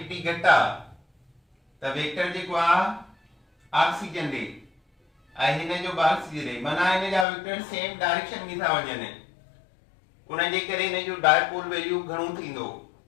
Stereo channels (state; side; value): drops out; right; at 7.2 s